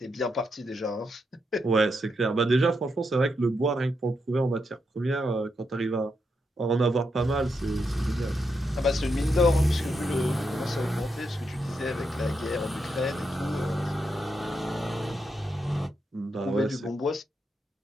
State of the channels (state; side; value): normal; both; correlation 0.83